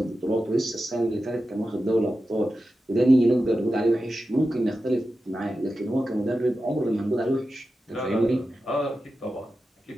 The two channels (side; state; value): both; normal; correlation 0.92